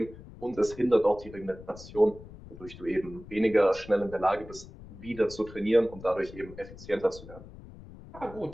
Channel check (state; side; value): noise; left; rumble, 17 dB below the sound